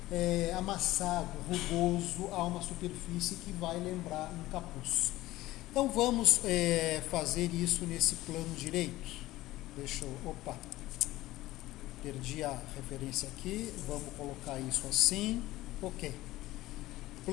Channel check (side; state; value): right; quieter; 16.9 dB